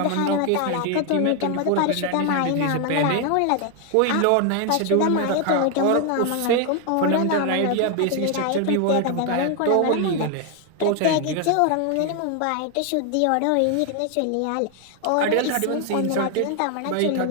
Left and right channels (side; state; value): both; different; correlation 0.01